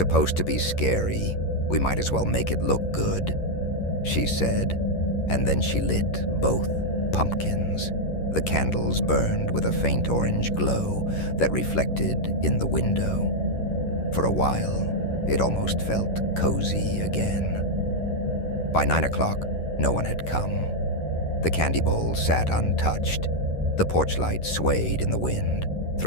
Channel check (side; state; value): right; late; 11 ms